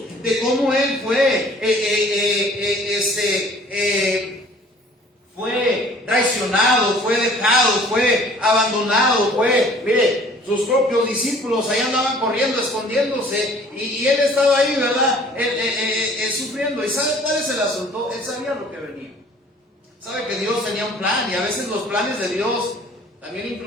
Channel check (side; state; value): both; normal; correlation 0.52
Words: de cómo Él fue traicionado, fue dejado, fue abandonado, mire, sus propios discípulos ahí andaban corriendo, escondiéndose, y Él estaba ahí, ¿verdad? Sufriendo. ¿Y sabe cuál es el asunto? Él sabía lo que venía. Sabe que Dios tenía un plan, y a veces los planes de Dios también